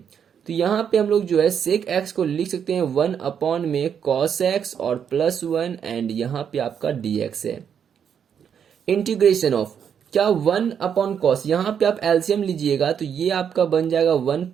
यहाँ पे हम लोग जो है सेक एक्स को लिख सकते हैं 1 में कॉस एक्स और प्लस वन एंड यहाँ पे आपका डी एक्स है। इंटीग्रेशन ऑफ क्या 1/cos, यहाँ पे आप एलसीएम लीजिएगा तो ये आपका बन जाएगा 1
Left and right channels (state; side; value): quieter; left; 7.9 dB